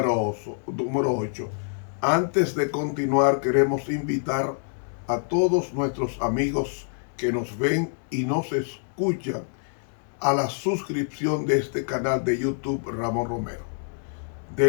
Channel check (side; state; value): right; silent; 61 dB below the other